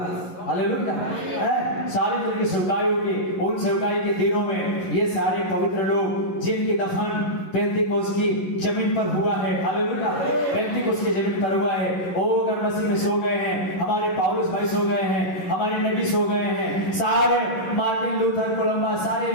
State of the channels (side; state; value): right; late; 11 ms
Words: हालेलुया। 40 दिन की सेवकाई होगी। उन सेवकाई के दिनों में ये सारे पवित्र लोग जिनकी दफन पेंतीकोस्त की जमीन पर हुआ है, हालेलुया, पेंतीकोस्त की जमीन पर हुआ है, वो अगर मसीह में सो गए हैं, हमारे पौलुस भाई सो गए हैं, हमारे नबी सो गए हैं, सारे मार्टिन लूथर कोलंबा सारे